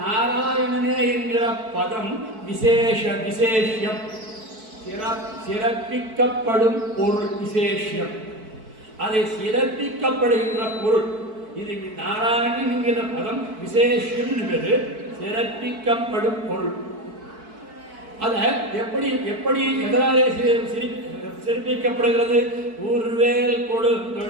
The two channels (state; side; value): late; left; 4.6 ms